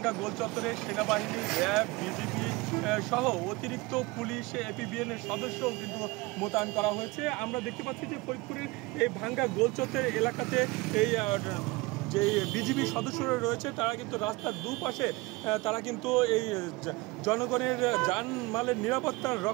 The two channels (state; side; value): quieter; left; 23.2 dB